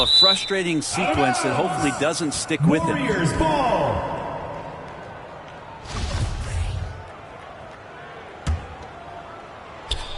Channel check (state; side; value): identical; both; correlation 1.00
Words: a frustrating sequence that hopefully doesn't stick with him. Warriors ball.